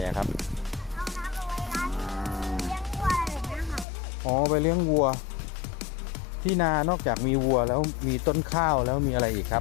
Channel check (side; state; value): right; drops out; at 3.9 s